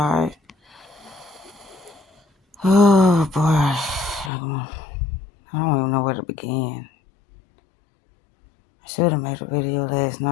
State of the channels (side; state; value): right; drops out; at 4.3 s